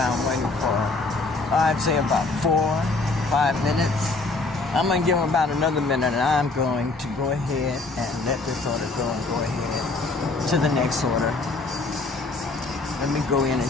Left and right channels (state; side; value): quieter; right; 3.5 dB